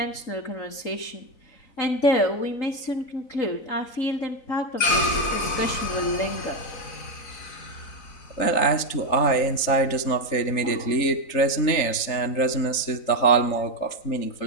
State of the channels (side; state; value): right; late; 4.0 ms